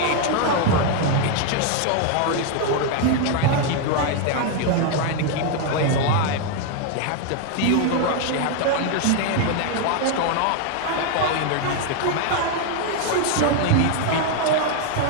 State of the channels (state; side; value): different; both; correlation 0.01